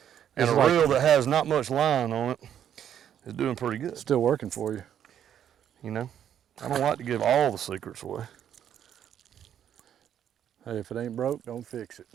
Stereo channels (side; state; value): left; quieter; 9.6 dB